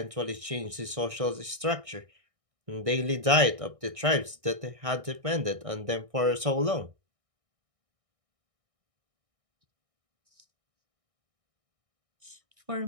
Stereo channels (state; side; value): late; left; 1.6 ms